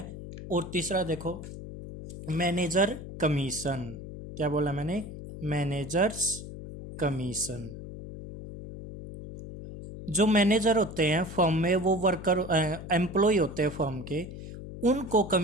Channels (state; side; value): noise; left; hum, 11 dB below the sound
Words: और तीसरा देखो मैनेजर कमीशन। क्या बोला मैंने? Managers commission. जो मैनेजर होते हैं फर्म में, वो वर्कर एम्प्लॉय होते हैं फर्म के, उनको